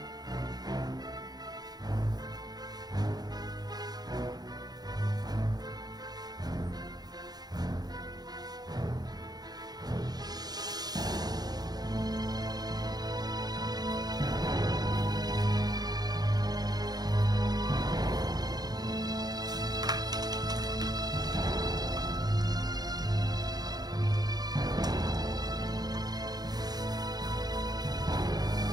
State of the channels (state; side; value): late; left; 0.19 ms